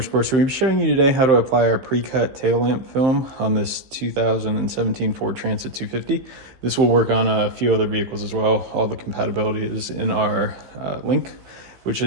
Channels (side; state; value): left; late; 15 ms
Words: So we'll be showing you today how to apply our pre-cut tail lamp film on this 2017 Ford Transit 250. This will work on a few other vehicles as well. All the compatibility is in our link, which